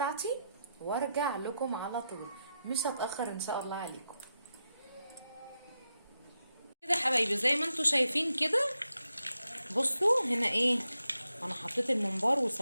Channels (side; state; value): both; inverted; correlation -0.86